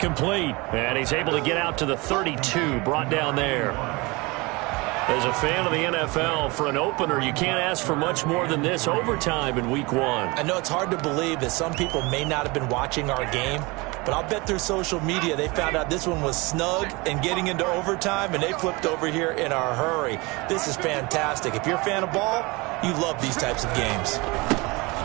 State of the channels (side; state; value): left; quieter; 25.1 dB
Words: And he's able to get out to the 32, brought down there. As a fan of the NFL, for an opener, you can't ask for much more than this overtime in Week 1. I know it's hard to believe that some people may not have been watching our game, but I'll bet through social media they found out this one was snug and getting into overtime, and they flipped over here in a hurry. This is fantastic. If you're a fan of ball, you love these types of games.